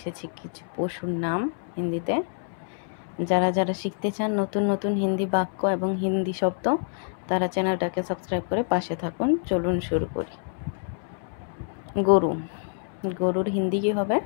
কিছু পশুর নাম হিন্দিতে। যারা যারা শিখতে চান নতুন নতুন হিন্দি বাক্য এবং হিন্দি শব্দ, তারা চ্যানেলটাকে সাবস্ক্রাইব করে পাশে থাকুন। চলুন শুরু করি। গরু। গরুর হিন্দি কি হবে?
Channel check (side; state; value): right; silent; 60 dB below the other